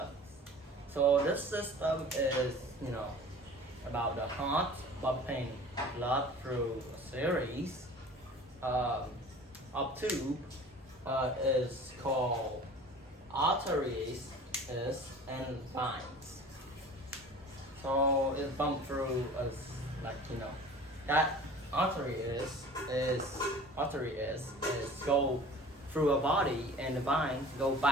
So this system is, about the heart pumping blood through a series of tube is called arteries and veins. So it's pumped through that artery is go through a body and the veins go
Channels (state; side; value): normal; both; correlation 0.43